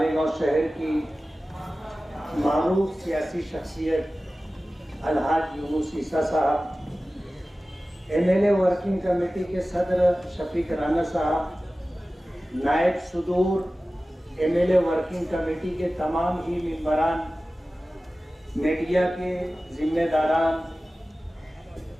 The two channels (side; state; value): both; normal; correlation 0.96